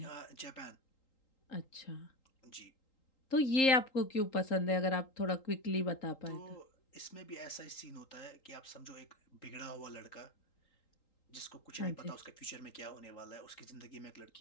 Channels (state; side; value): late; right; 3.8 ms